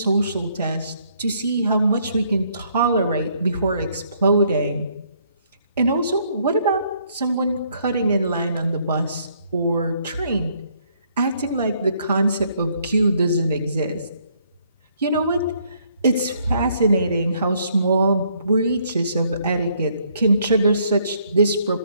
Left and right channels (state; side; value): inverted; both; correlation -0.68